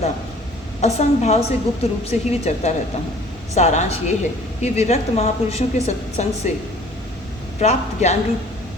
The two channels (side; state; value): both; normal; correlation 0.51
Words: असंग भाव से गुप्त रूप से ही विचरता रहता हूँ। सारांश ये है कि विरक्त महापुरुषों के सत्संग से प्राप्त ज्ञान रूप